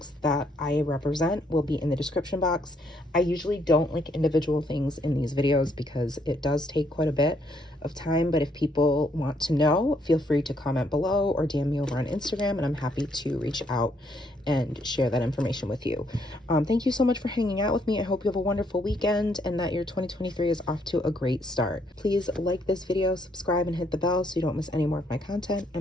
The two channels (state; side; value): normal; both; correlation 0.71